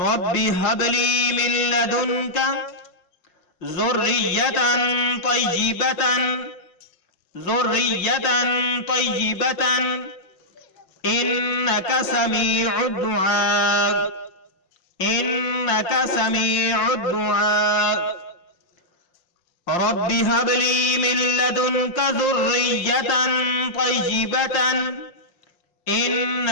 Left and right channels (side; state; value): right; late; 5.6 ms